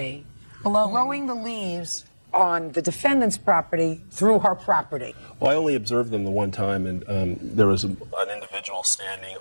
blowing the leaves on the defendant's property through her property. Well, I only observed them the one time, and there was an individual standing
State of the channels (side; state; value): both; inverted; correlation -1.00